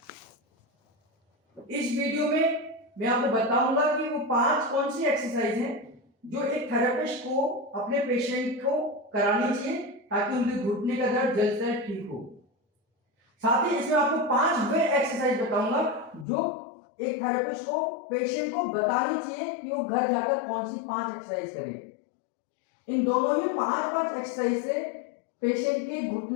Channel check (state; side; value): drops out; right; at 16.2 s